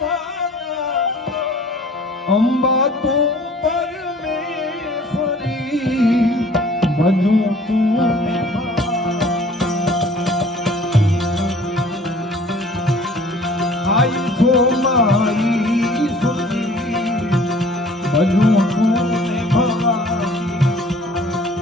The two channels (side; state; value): both; normal; correlation 0.51